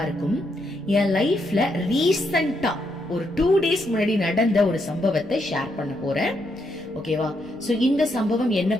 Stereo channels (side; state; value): left; noise; rumble, 26 dB below the sound